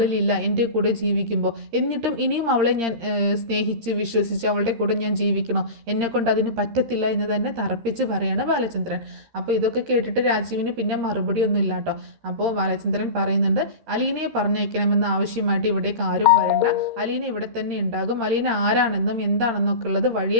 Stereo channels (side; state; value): left; late; 13 ms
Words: എൻ്റെ കൂടെ ജീവിക്കുമ്പോൾ. എന്നിട്ടും ഇനിയും അവളെ ഞാൻ സ്നേഹിച്ച് വിശ്വസിച്ച് അവളുടെ കൂടെ ഞാൻ ജീവിക്കണോ? എന്നെക്കൊണ്ട് അതിന് പറ്റത്തില്ല എന്ന് തന്നെ തറപ്പിച്ച് പറയാണ് ബാലചന്ദ്രൻ. അപ്പോൾ ഇതൊക്കെ കേട്ടിട്ട് രാജീവിന് പിന്നെ മറുപടി ഒന്നും ഇല്ല കേട്ടോ. അപ്പോൾ ബാലചന്ദ്രൻ പറയുന്നുണ്ട്, അലീനയെ പറഞ്ഞയക്കണമെന്ന ആവശ്യമായിട്ട് ഇവിടേക്ക് ആരും വരണ്ട, അലീന ഇവിടെ തന്നെ ഉണ്ടാകും, അലീന ആരാണെന്നും എന്താണെന്നൊക്കെ ഉള്ളത്